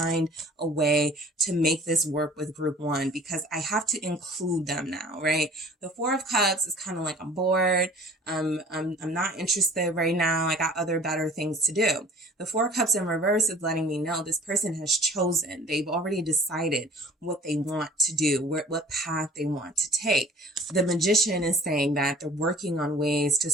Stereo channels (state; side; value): normal; both; correlation 0.49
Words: a way to make this work with group one because I have to include them now, right? The Four of Cups is kind of like, I'm bored. I'm not interested right now. I got other better things to do. The Four of Cups in reverse is letting me know this person has chosen. They've already decided what they want to do, what path they want to take. The Magician is saying that they're working on ways to